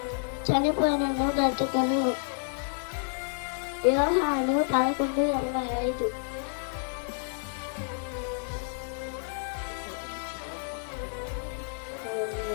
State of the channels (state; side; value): silent; right; 58 dB below the other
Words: చనిపోయినను బ్రతుకను. యోహాను 11:25.